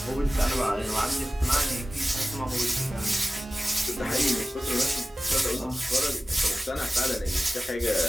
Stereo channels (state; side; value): normal; both; correlation 0.96